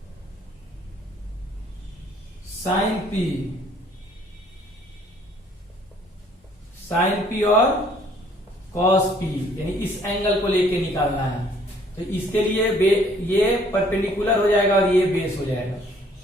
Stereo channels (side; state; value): both; normal; correlation 0.60